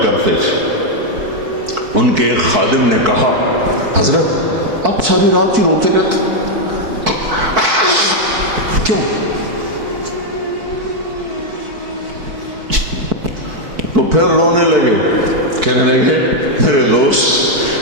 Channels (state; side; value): late; left; 4.6 ms